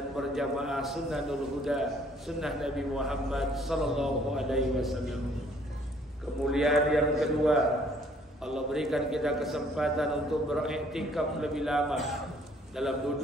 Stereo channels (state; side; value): normal; both; correlation 0.61